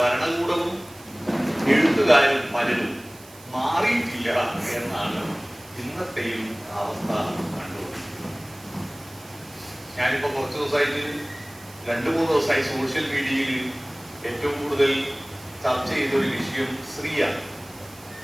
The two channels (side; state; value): right; noise; hiss, 22 dB below the sound